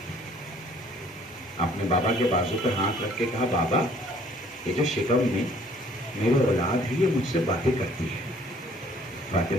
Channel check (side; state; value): both; normal; correlation 0.58